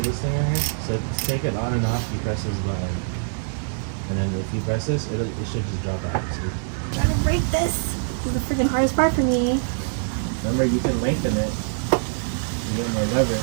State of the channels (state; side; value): silent; left; 63 dB below the other